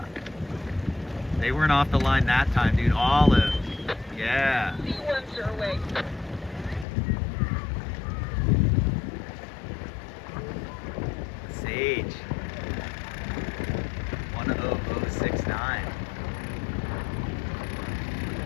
They weren't off the line that time, dude. Olive. Yeah. C1s are away. Sage. 10069.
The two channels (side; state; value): right; drops out; at 6.9 s